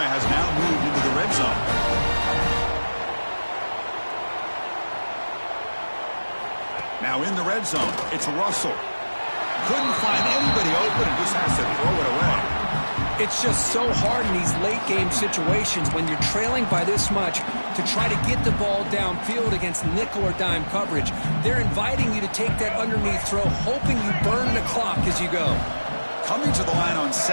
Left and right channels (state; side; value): inverted; both; correlation -1.00